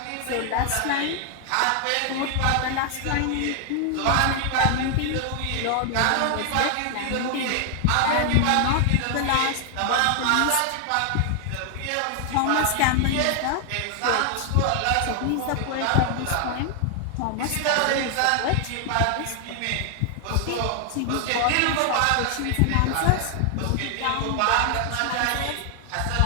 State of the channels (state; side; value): different; both; correlation 0.00